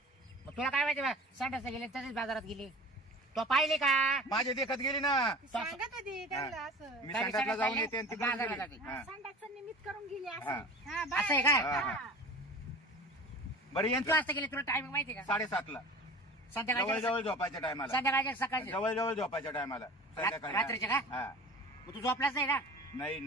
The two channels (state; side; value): normal; both; correlation 0.39